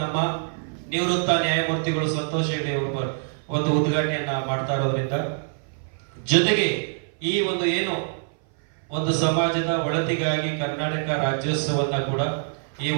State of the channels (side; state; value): left; silent; 58 dB below the other